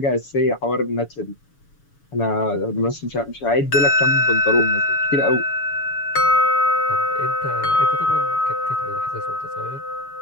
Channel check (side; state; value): right; late; 7.0 ms